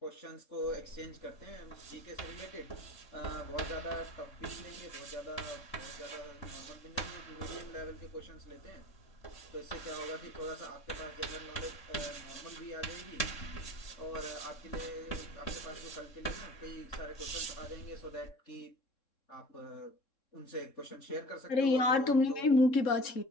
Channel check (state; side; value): late; right; 3.7 ms